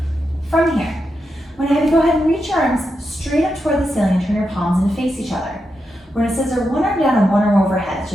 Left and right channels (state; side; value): normal; both; correlation 0.86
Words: From here, I'm going to have you go ahead and reach your arms straight up toward the ceiling and turn your palms in to face each other. We're going to scissor one arm down and one arm overhead,